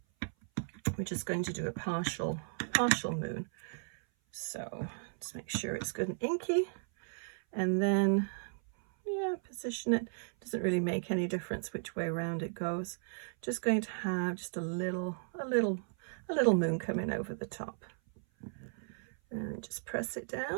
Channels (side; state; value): left; silent; 54 dB below the other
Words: We're just going to do a partial moon. So just make sure it's good and inky, and then, yeah, position it. Doesn't really make any difference which way around it goes. Just going to have just a little moon coming over the top, and just press it